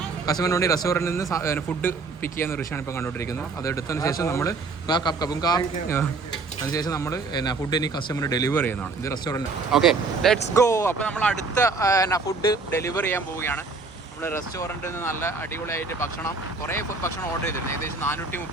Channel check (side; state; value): left; quieter; 4.1 dB